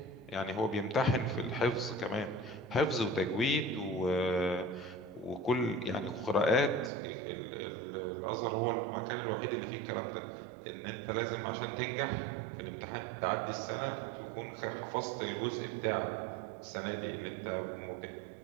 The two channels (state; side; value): drops out; left; at 6.9 s